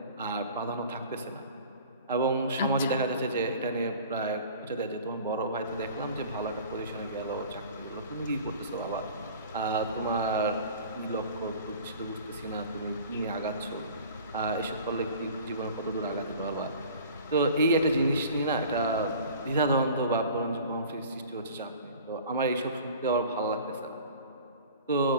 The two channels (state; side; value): inverted; both; correlation -0.44